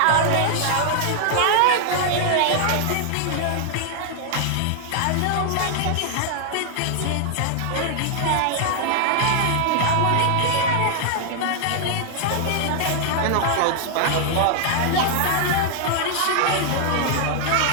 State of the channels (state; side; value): different; both; correlation 0.00